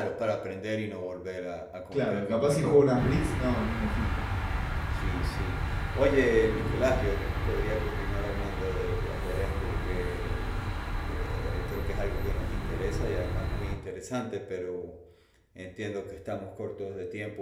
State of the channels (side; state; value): both; identical; correlation 1.00